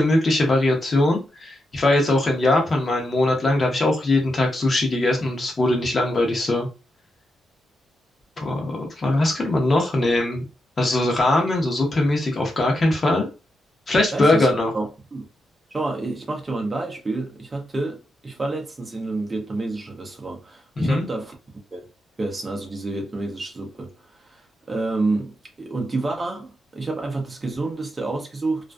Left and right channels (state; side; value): normal; both; correlation 0.85